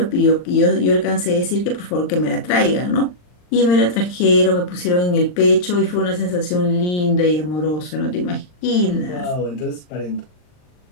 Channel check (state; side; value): late; right; 39 ms